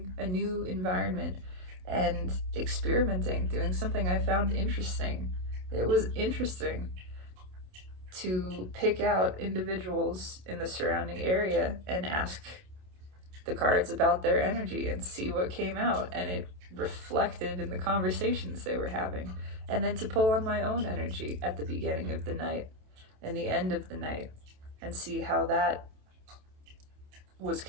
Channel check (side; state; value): left; late; 27 ms